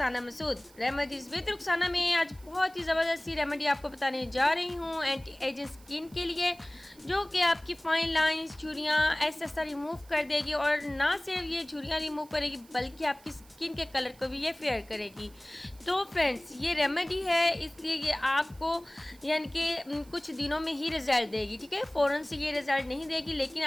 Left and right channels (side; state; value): right; noise; hiss, 26 dB below the sound